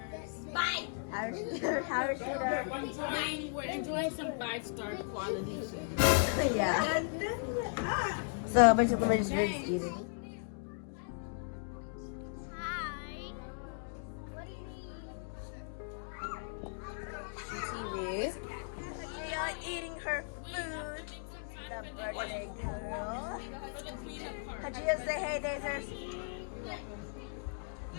We're enjoying some 5-star quality. Yeah. So basically we're just eating. Hi. What do you need? TV. We are eating her food. The birthday girl. Hajia, say hey, Dazers.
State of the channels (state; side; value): silent; right; digital silence